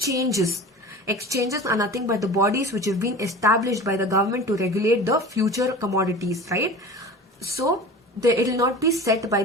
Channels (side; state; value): both; normal; correlation 0.36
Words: are nothing but the bodies which have been established by the government to regulate the future commodities, right? So it will not be set by